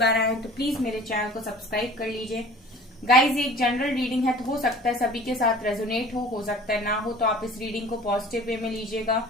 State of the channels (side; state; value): both; normal; correlation 0.45